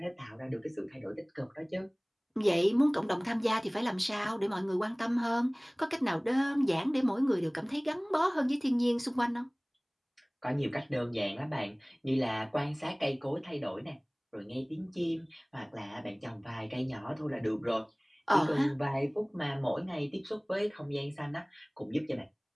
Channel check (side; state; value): both; identical; correlation 1.00